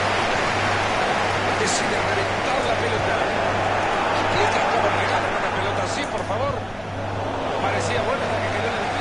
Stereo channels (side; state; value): both; identical; correlation 1.00